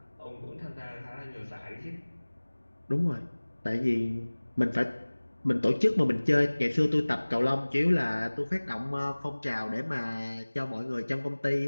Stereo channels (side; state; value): both; inverted; correlation -1.00